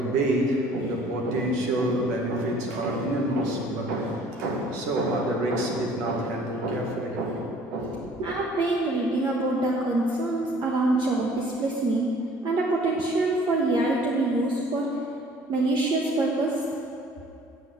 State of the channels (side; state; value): both; normal; correlation 0.53